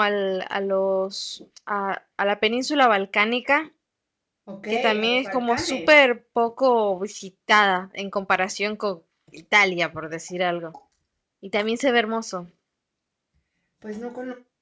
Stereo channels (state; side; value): identical; both; correlation 1.00